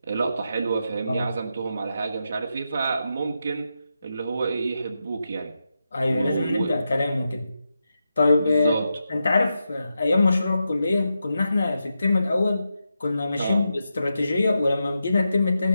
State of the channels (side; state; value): both; inverted; correlation -0.87